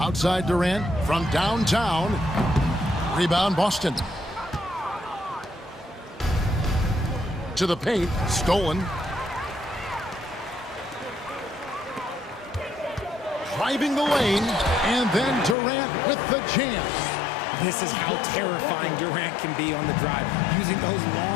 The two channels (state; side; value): drops out; right; at 15.6 s